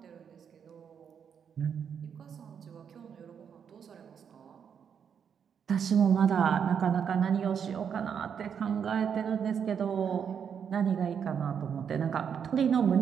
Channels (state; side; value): quieter; left; 7.5 dB